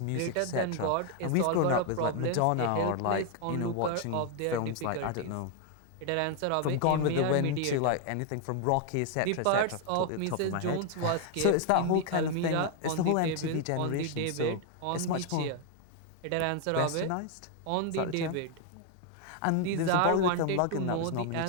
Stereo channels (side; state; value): both; different; correlation 0.01